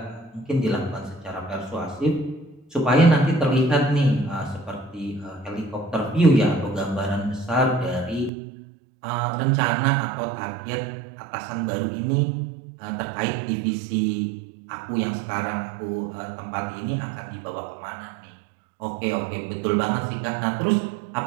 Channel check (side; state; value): left; drops out; at 8.3 s